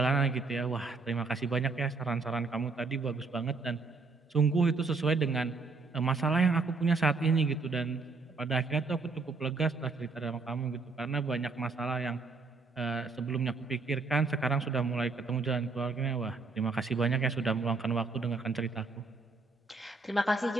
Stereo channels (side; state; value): left; quieter; 4.1 dB